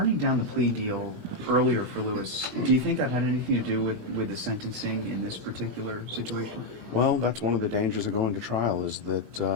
down the plea deal earlier for Lewis, do you think that had anything to do with the sentencing in this particular situation? well, that's one of the dangers of going to trial is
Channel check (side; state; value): left; late; 16 ms